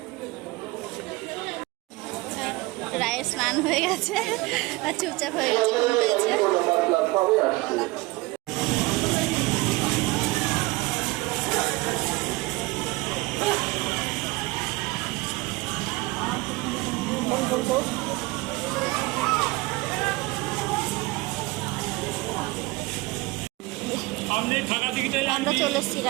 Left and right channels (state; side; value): quieter; left; 22.3 dB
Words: রায়ের স্নান হয়ে গেছে আর চুপচাপ হয়ে গেছে। আমরা চলে এসেছি